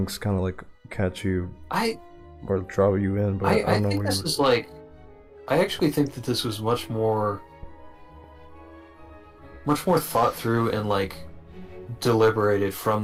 kind of like catch you or draw you in. But I don't know. Think this is like, I actually think that this was much more thought through and like deliberated from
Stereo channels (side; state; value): both; identical; correlation 1.00